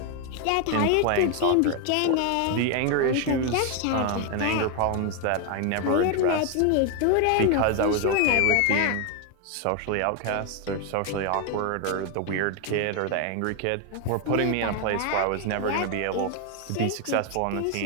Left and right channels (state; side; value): different; both; correlation 0.01